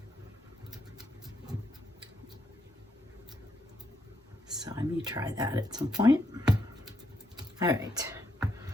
So I may try that at some point. All right,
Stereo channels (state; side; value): normal; both; correlation 0.77